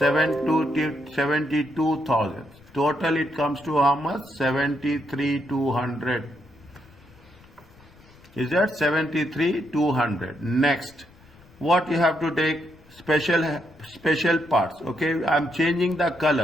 Total it comes to how much? 73,200. Is that 73,200? Next, what you have to take? Special parts. Okay, I'm changing the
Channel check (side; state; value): left; noise; rumble, 26 dB below the sound